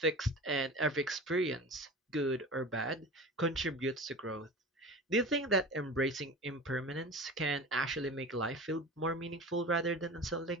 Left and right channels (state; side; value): normal; both; correlation 0.34